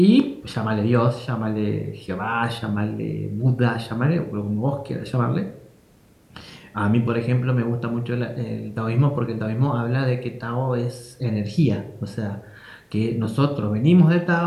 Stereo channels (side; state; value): both; identical; correlation 1.00